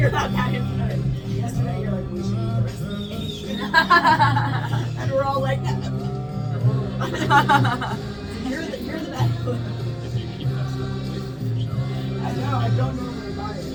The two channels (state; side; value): identical; both; correlation 1.00